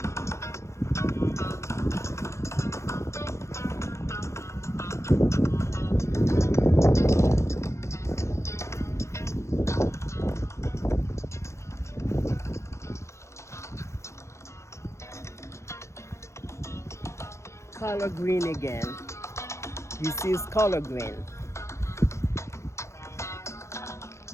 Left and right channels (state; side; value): late; right; 0.14 ms